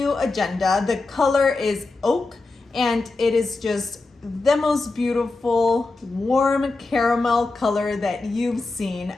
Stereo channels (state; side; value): quieter; right; 3.5 dB